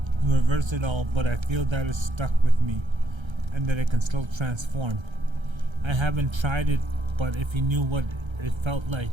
it all, but I feel that it's stuck with me and that I can still transform. I haven't tried it, but if you knew what it felt like,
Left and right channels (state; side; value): late; left; 1.3 ms